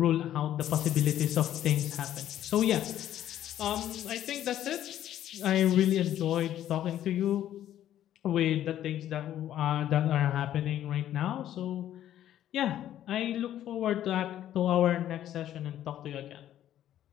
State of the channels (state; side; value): quieter; right; 11.8 dB